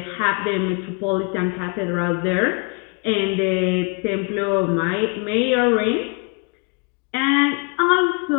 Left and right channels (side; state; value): right; quieter; 33.6 dB